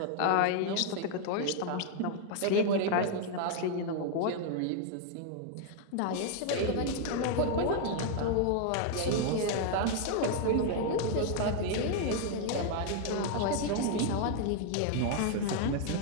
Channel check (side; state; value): both; different; correlation 0.00